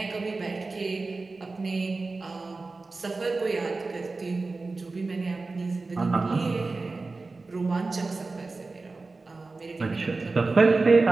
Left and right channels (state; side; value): quieter; left; 3.7 dB